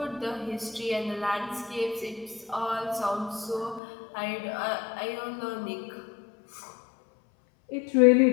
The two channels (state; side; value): drops out; right; at 3.8 s